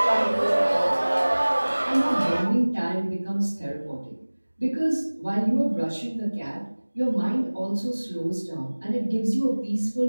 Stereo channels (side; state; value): both; inverted; correlation -1.00